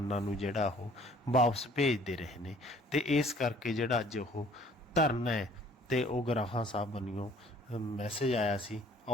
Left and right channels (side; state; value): both; normal; correlation 0.56